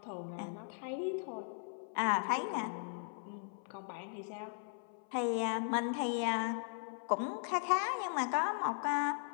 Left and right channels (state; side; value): silent; right; 52 dB below the other